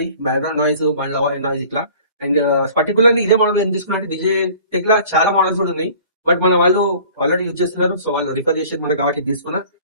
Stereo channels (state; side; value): inverted; both; correlation -0.49